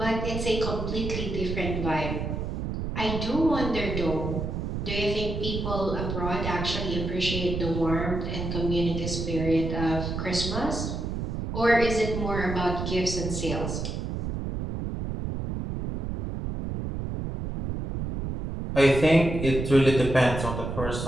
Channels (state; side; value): noise; right; rumble, 4 dB below the sound